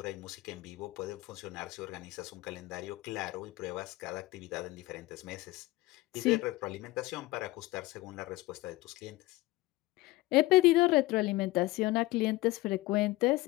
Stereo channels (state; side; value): quieter; right; 19.8 dB